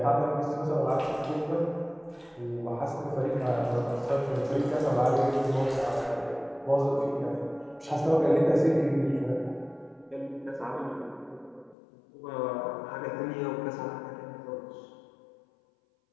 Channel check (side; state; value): right; drops out; at 11.8 s